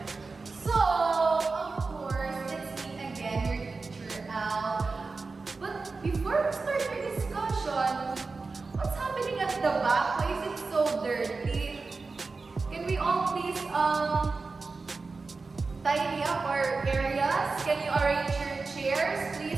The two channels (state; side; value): quieter; left; 4.1 dB